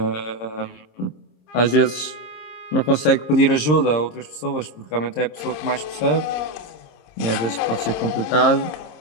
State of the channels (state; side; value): late; right; 26 ms